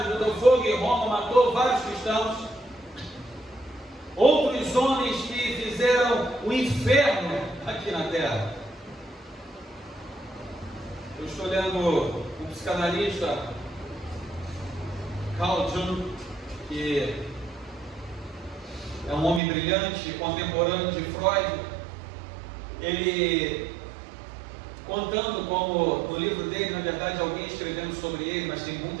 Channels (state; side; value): drops out; left; at 19.4 s